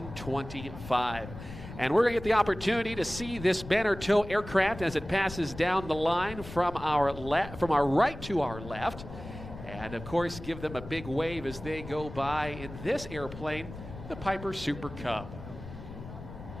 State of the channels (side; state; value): left; noise; rumble, 13 dB below the sound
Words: And we're going to get the opportunity to see this banner tow aircraft as it passes down the line from our right to our left. And of course, give them a big wave as they go by in this airplane, the Piper Super Cub.